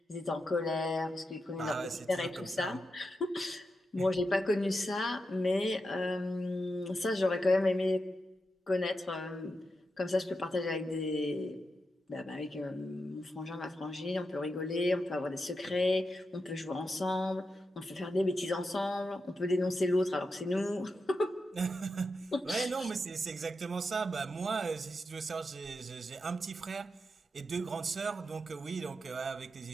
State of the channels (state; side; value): normal; both; correlation 0.87